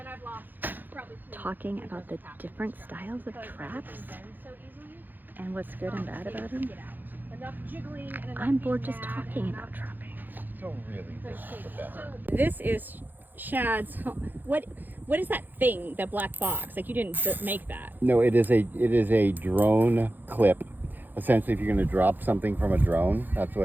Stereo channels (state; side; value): late; left; 0.088 ms